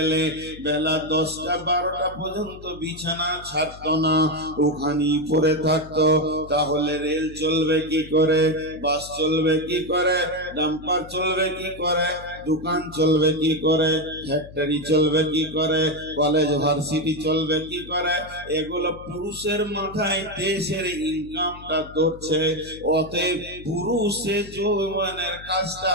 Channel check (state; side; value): noise; left; hum, 18 dB below the sound